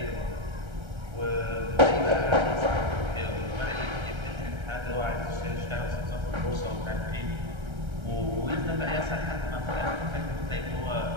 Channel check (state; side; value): late; left; 1.3 ms